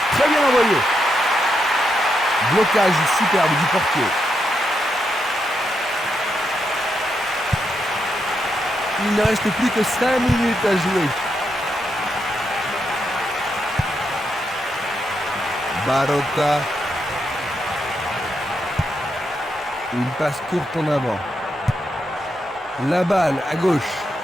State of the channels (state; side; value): normal; both; correlation 0.82